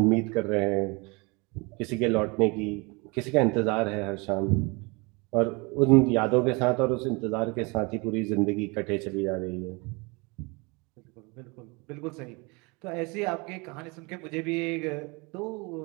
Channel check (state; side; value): quieter; left; 28.2 dB